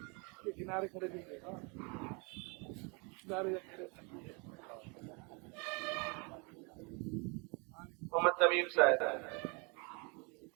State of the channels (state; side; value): quieter; left; 32.2 dB